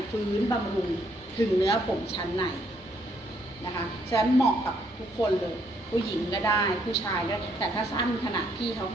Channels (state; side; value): normal; both; correlation 0.70